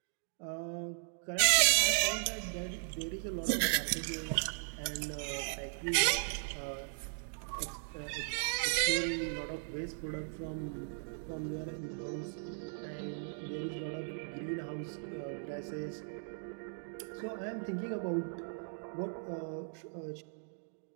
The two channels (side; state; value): left; silent; digital silence